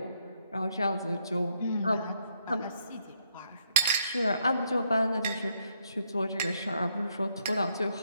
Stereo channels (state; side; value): inverted; both; correlation -0.74